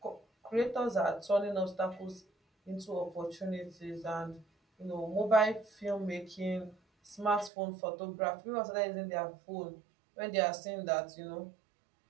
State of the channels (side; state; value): left; drops out; at 7.5 s